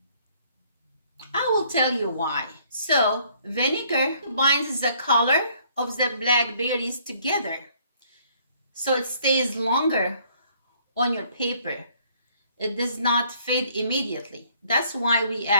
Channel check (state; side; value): inverted; both; correlation -0.63